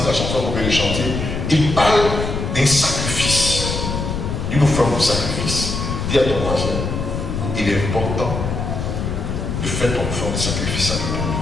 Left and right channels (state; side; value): noise; left; rumble, 3 dB below the sound